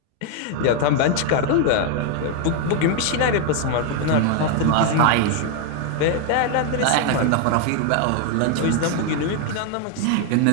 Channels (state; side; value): different; both; correlation 0.00